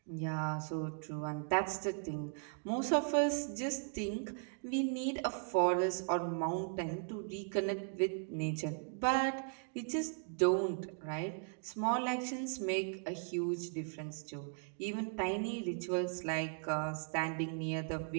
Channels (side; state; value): left; silent; 53 dB below the other